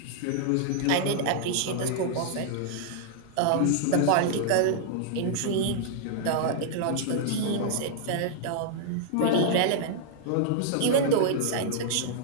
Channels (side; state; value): both; different; correlation -0.01